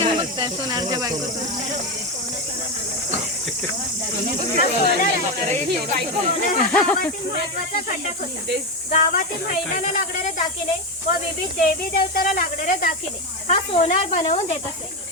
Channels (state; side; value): normal; both; correlation 0.12